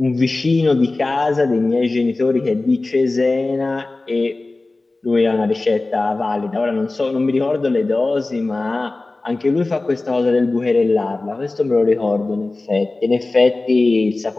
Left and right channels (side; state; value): right; quieter; 3.2 dB